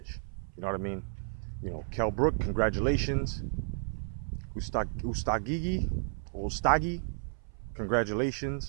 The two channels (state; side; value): silent; left; 56 dB below the other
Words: You know what I mean? You know, Kell Brook, congratulations. Ustagi,